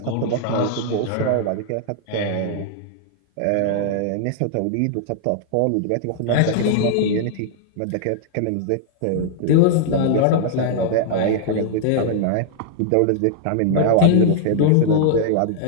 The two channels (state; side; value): different; both; correlation -0.01